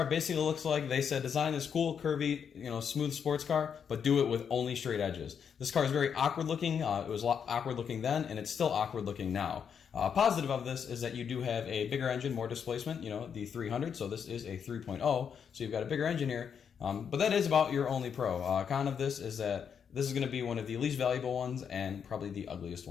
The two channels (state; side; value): quieter; right; 7.3 dB